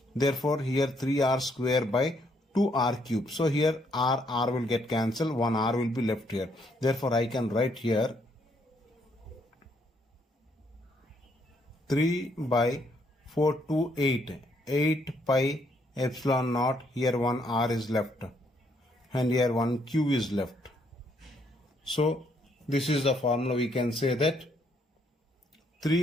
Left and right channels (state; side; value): normal; both; correlation 0.71